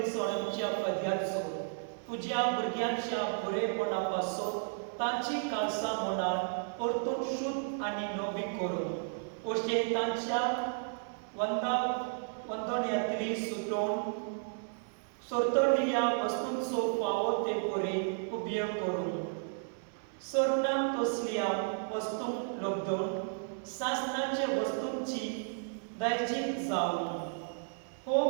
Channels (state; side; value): silent; left; 56 dB below the other